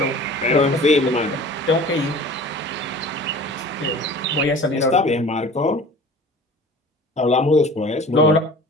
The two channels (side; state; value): both; normal; correlation 0.42